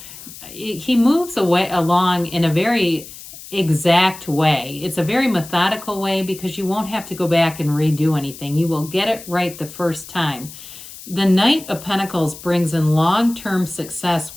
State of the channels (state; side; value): noise; left; hiss, 15 dB below the sound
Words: he moves along in a very exact way. It's a very methodical way because you won't have to go back and redo anything. You will get it right the first time. The Knight of Pentacles brings in long-term success